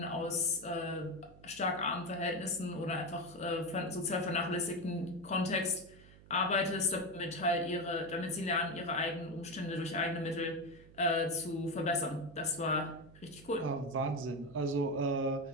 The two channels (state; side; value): noise; right; hum, 21 dB below the sound